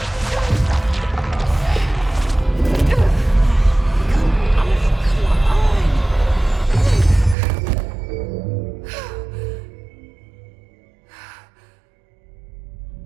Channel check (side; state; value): left; drops out; at 7.4 s